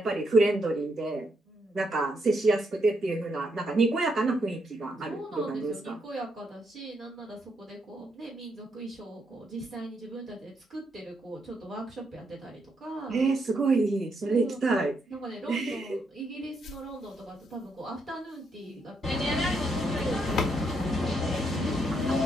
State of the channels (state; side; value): normal; both; correlation 0.78